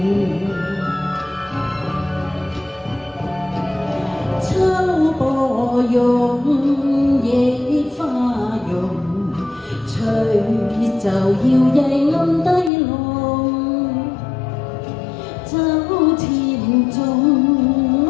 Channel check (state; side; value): drops out; right; at 12.7 s